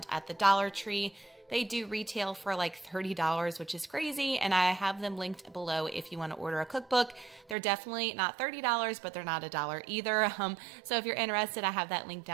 at the Dollar Tree. They do retail for like $30, which is crazy, and I have them linked below if you want to order a cookbook. They're definitely not $30, but they're not $1 either. So if you're interested, I have that link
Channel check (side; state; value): left; drops out; at 7.6 s